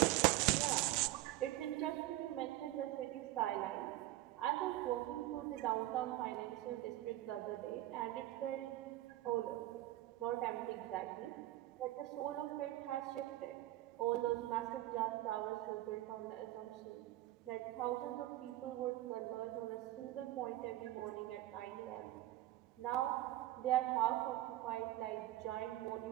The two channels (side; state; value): left; quieter; 15.9 dB